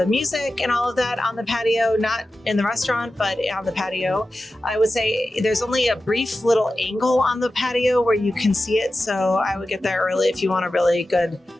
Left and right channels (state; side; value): normal; both; correlation 0.93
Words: music and all of that on the patio, not in the restaurant, but on the patio. I would say there's only a brief little angle on the patio where you can see it. So I would get there early if you want a really good